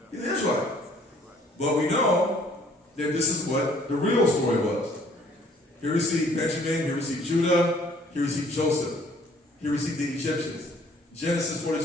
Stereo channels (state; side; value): normal; both; correlation 0.59